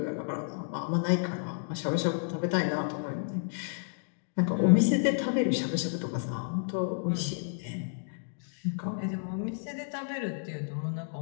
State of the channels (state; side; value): silent; right; digital silence